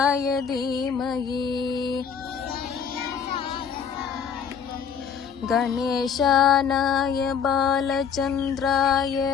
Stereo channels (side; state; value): right; quieter; 7.1 dB